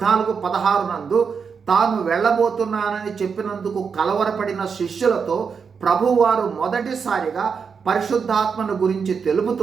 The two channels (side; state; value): left; quieter; 6.0 dB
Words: నందు తాను వెళ్ళబోతున్నానని చెప్పినందుకు కలవరపడిన శిష్యులతో ప్రభువారు మొదటిసారిగా పరిశుద్ధాత్మను గురించి